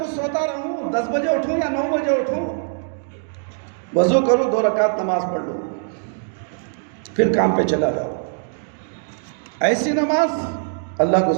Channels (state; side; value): silent; left; digital silence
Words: سوتا رہوں، 10 بجے اٹھوں یا 9 بجے اٹھوں، وضو کروں، 2 رکعت نماز پڑھ لوں، پھر کام پہ چلا جاؤ، ایسی نماز اللہ کو